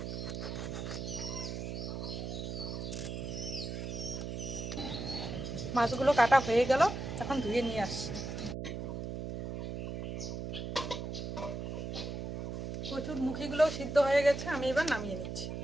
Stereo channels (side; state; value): right; noise; hum, 5 dB below the sound